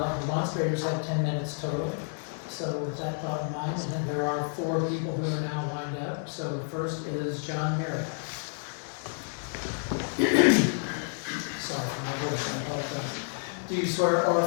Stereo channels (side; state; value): right; silent; 58 dB below the other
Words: Remonstrators have 10 minutes total, so with that thought in mind, and then there are 4 people who are now lined up. So the first is John Marriott. Sorry for my voice, I apologize. Do you swear or